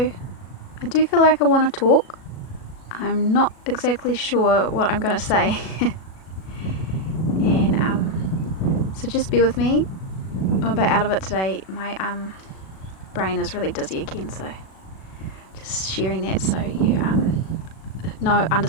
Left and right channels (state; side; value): late; right; 37 ms